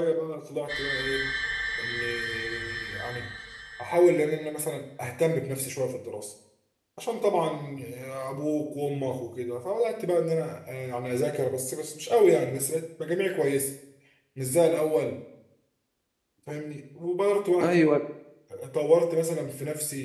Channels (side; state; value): both; identical; correlation 1.00